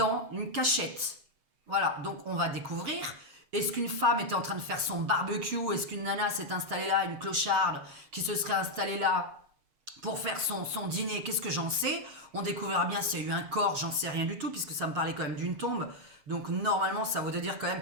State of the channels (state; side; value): late; left; 7.3 ms